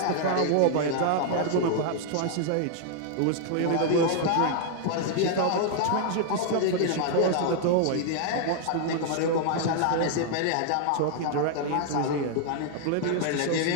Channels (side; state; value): both; different; correlation -0.01